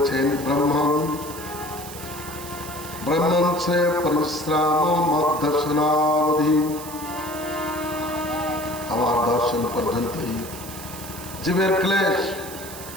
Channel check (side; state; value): right; noise; hiss, 13 dB below the sound